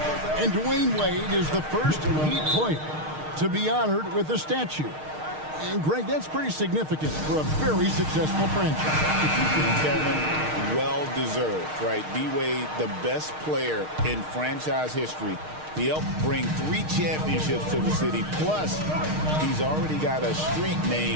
And Dwayne Wade is the first Heat player to be honored with a statue. And Greg, that's pretty significant for a very successful franchise. Kevin, well-deserved, right? D-Wade, the best player in franchise history. He helped bring 3 championships to the city. Plus, he's already got a street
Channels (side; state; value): left; late; 6.5 ms